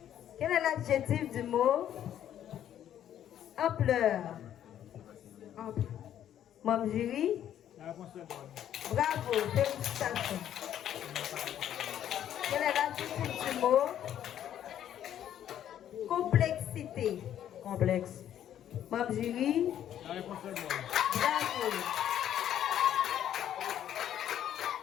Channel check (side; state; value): right; quieter; 10.7 dB